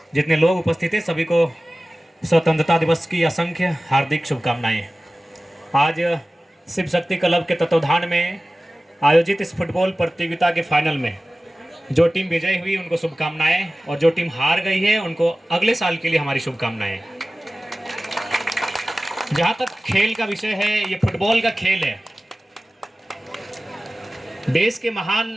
जितने लोग उपस्थित हैं सभी को स्वतंत्रता दिवस की असंख्य हार्दिक शुभकामनाएं। आज शिव शक्ति क्लब के तत्वाधान में आयोजित इस फुटबॉल प्रतियोगिता के फाइनल में जो टीम विजयी हुई उनको शुभकामनाएं और जो टीम हार गई है उनको अगले साल के लिए हमारी शुभकामनाएं। जहां तक खेल का विषय है, ये फुटबॉल का खेल है। देश के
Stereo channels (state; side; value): normal; both; correlation 0.97